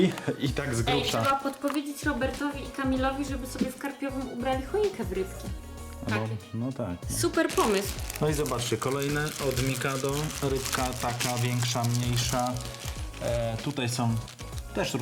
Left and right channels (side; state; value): both; identical; correlation 1.00